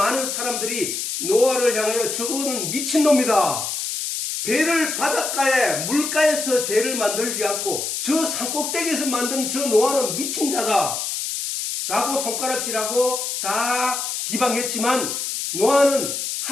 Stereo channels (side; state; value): left; noise; hiss, 3 dB below the sound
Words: 사람들이 노아를 향하여 저거는 미친놈이다. 배를 바닷가에 물가에서 배를 만들지 않고 저 산 꼭대기에서 만든 저 노아는 미친 자다 라고 손가락질하고 다 비방했지만 노아는